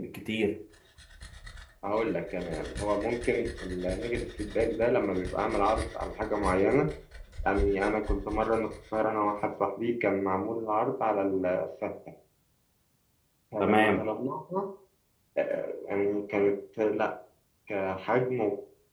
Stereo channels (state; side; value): identical; both; correlation 1.00